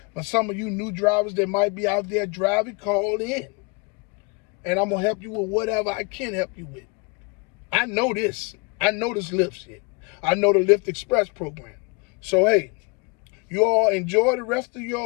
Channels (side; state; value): right; quieter; 30.2 dB